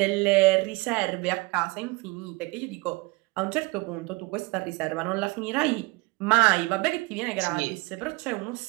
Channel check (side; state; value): left; quieter; 24.8 dB